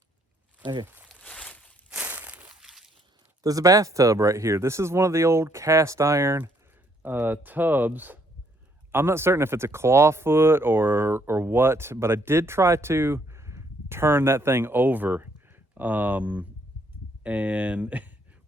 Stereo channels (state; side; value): normal; both; correlation 0.69